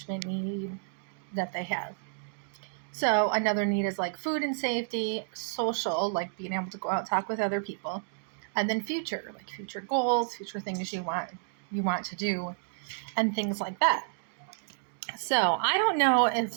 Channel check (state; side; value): silent; left; digital silence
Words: need that they have. So another need is like food and safety, social, like being able to go out and talk with other people, and then future, like future goals, future things you want to do, and things like that. So I don't know